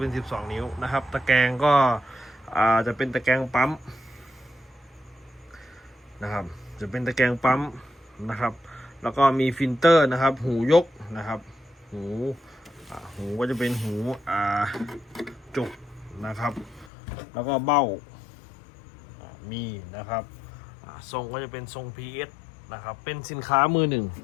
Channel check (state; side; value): drops out; right; at 16.9 s